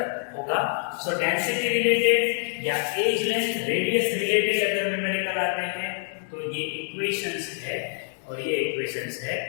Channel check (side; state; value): right; silent; 59 dB below the other